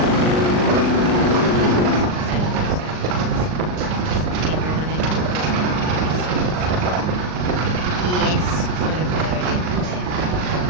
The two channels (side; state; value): left; late; 39 ms